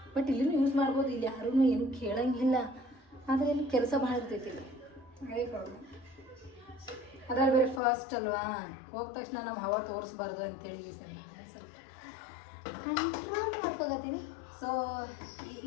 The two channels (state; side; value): drops out; right; at 7.8 s